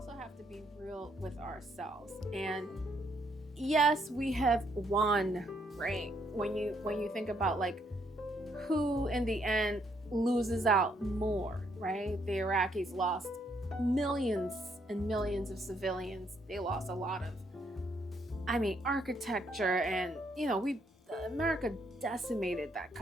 have to be real with ourselves. And yes, we have won, right? When you think about like who in the end loses out more, right? The Iraqis lost millions and millions of civilians. They lost a lot of, architecture, and America decimated that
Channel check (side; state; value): both; normal; correlation 0.72